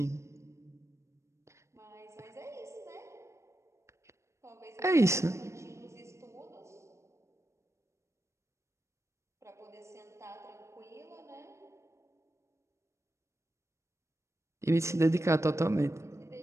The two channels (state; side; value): late; left; 0.14 ms